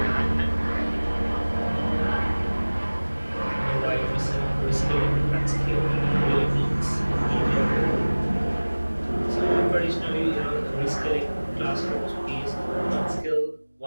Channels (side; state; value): both; inverted; correlation -1.00